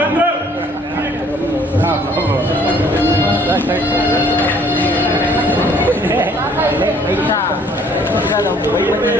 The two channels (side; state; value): both; normal; correlation 0.59